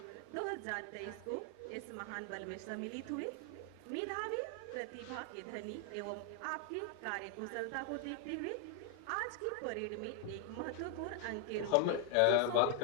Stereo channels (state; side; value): different; both; correlation 0.00